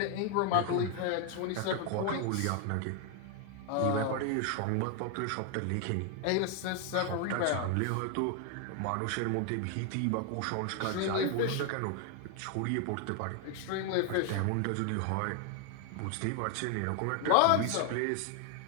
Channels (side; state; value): both; different; correlation 0.01